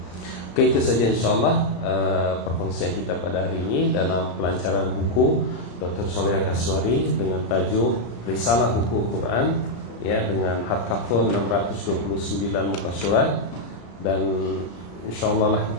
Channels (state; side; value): late; right; 34 ms